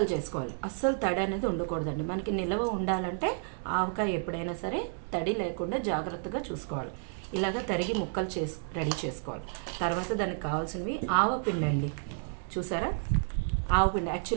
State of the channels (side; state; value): left; silent; 57 dB below the other